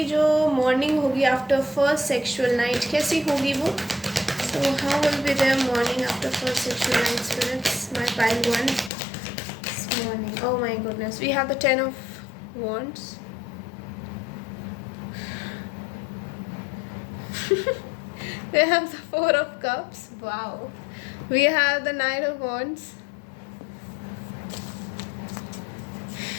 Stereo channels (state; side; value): drops out; right; at 8.9 s